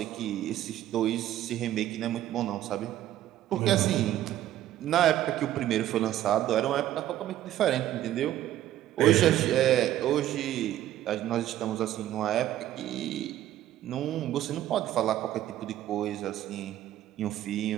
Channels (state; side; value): quieter; left; 12.9 dB